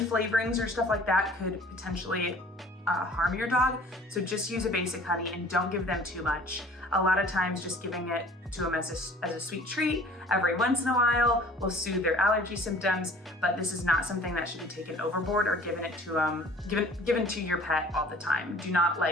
or stuff like that could potentially harm your dog. So just use a basic honey and don't give them too much. A lot of times just giving it to them as a sweet treat every once in a while will soothe their allergy symptoms, but this is not something that should be taken overboard or given to your pet all the time. Do not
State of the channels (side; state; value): both; normal; correlation 0.50